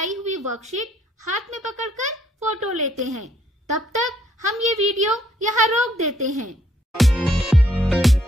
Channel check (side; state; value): both; normal; correlation 0.68